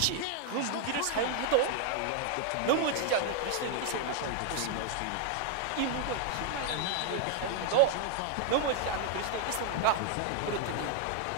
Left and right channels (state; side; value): different; both; correlation 0.00